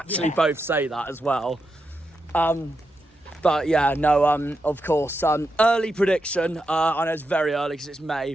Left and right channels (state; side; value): normal; both; correlation 0.86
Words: both say that as well. But yeah, no, of course. Early prediction. I know it's very early because it's May,